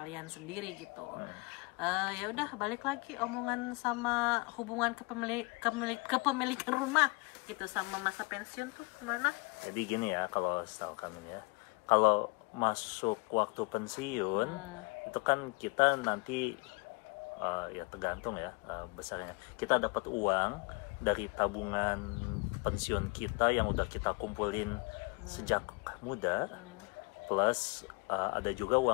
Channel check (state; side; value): quieter; right; 27.6 dB